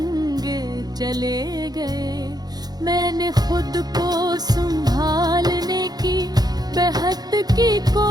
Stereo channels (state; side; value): late; left; 0.19 ms